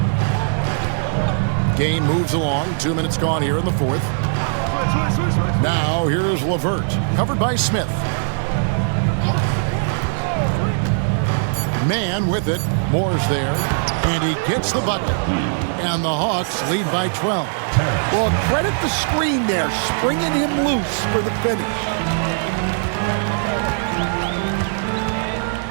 Game moves along. 2 minutes gone here in the fourth. Now here's LeVert, covered by Smith. Man with it. Moore's there. And he gets the bucket. And the Hawks lead by 12. Well, credit the screen there, springing him loose for the finish.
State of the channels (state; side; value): silent; left; 66 dB below the other